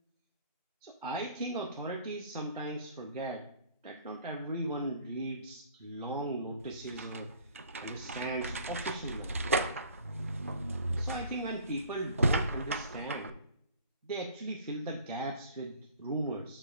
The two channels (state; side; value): inverted; both; correlation -0.51